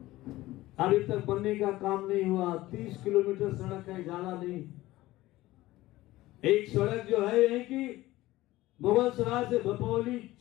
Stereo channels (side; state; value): right; quieter; 17.3 dB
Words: अभी तक बनने का काम नहीं हुआ। 30 किलोमीटर सड़क है, ज्यादा नहीं। एक सड़क जो है यही की मुगल सराय से भपौली